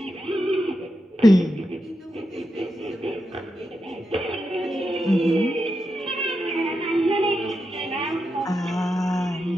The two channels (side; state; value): both; normal; correlation 0.87